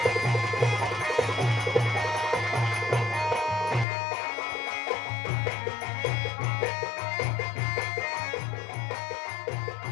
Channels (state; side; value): drops out; right; at 3.9 s